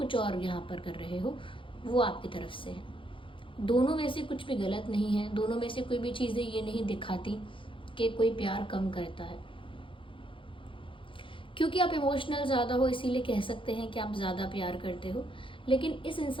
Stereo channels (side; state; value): right; late; 0.25 ms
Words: और यहाँ पर कर रहे हो, वो आपकी तरफ से है। दोनों में से कुछ भी गलत नहीं है, दोनों में से कोई भी चीज़ें ये नहीं दिखाती कि कोई प्यार कम करता है। क्योंकि आप इमोशनल ज़्यादा हो इसीलिए कह सकते हैं कि आप ज़्यादा प्यार करते हो, लेकिन इस